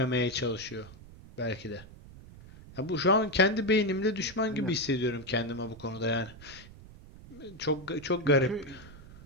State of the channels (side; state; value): right; noise; rumble, 18 dB below the sound